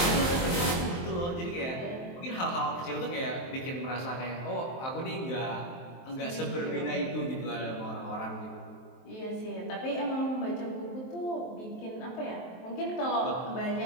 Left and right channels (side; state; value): right; late; 23 ms